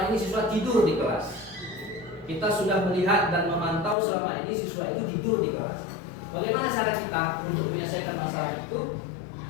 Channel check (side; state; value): right; drops out; at 4.0 s